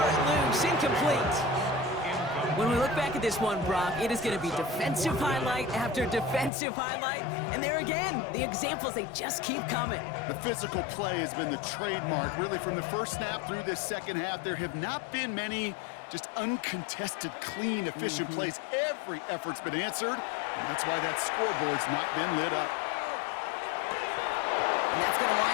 it loose. Incomplete. When we look back at this one, Brock, it is going to be defensive highlight after defensive highlight. And there again, the examples, they just keep coming. The physical play has been the trademark. Really, from the first snap through this second half, there have not been many just uncontested, clean, efficient plays. Every effort's been answered, and that's why that scoreboard's not been lit up. And that's going to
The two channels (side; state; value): right; drops out; at 6.5 s